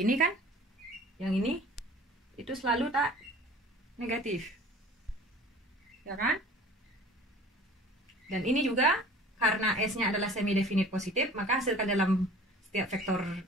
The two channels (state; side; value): normal; both; correlation 0.45